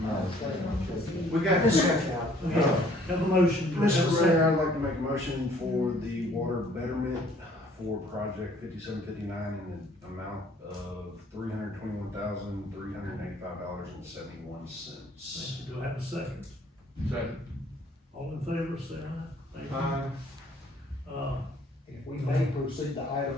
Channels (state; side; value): normal; both; correlation 0.59